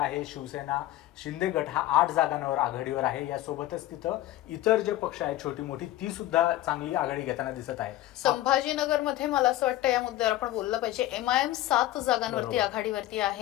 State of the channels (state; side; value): quieter; right; 15.0 dB